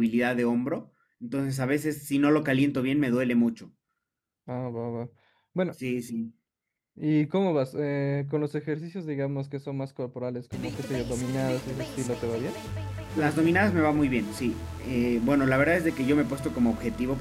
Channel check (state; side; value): identical; both; correlation 1.00